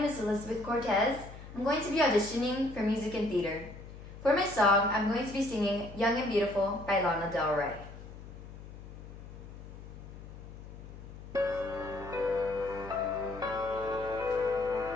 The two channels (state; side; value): noise; left; hum, 14 dB below the sound